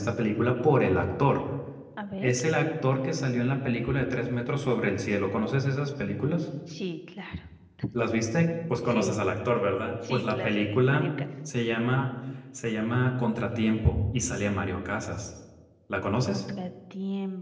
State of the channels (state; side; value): identical; both; correlation 1.00